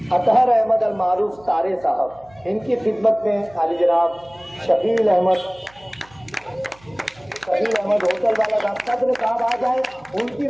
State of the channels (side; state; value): right; noise; hum, 27 dB below the sound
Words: اطہر احمد المعروف تارے صاحب, ان کی خدمت میں علی جناب شکیل احمد ہوٹل والا صدر صاحب آ جائے. ان کی